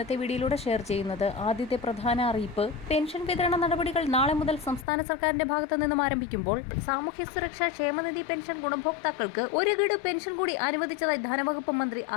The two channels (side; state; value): right; drops out; at 4.9 s